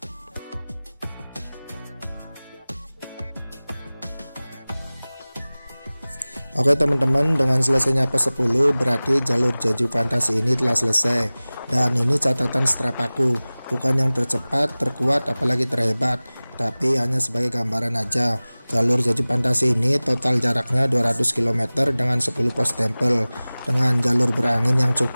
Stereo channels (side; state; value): both; inverted; correlation -0.99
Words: Oke teman-teman, dengan selesainya pos 10 berarti jalur Jeju Fantasi ini telah selesai. Dan ini catatan strap aku, bukan yang tercepat, terkuat, apalagi terhebat, tapi hanya sebagai gambaran aja. Jalur Jeju Fantasi ini total jaraknya 200 km dengan 10 pos tempel, dengan jalur berangin yang